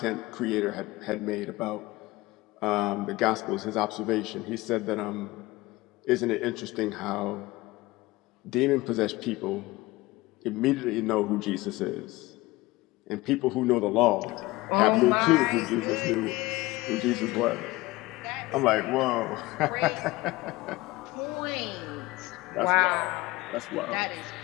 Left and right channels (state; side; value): quieter; right; 20.3 dB